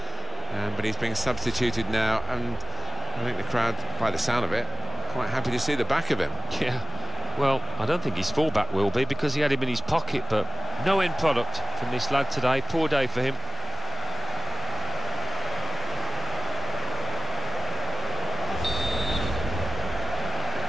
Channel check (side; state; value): both; normal; correlation 0.96